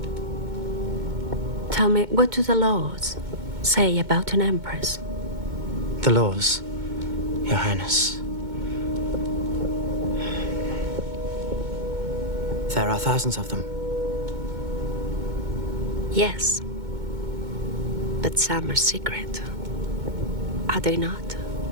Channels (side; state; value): left; late; 2.2 ms